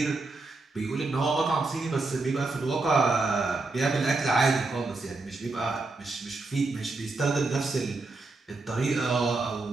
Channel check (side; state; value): left; quieter; 3.5 dB